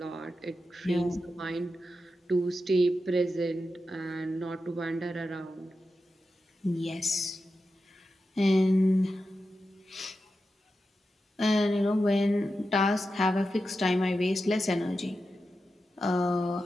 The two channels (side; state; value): both; normal; correlation 0.90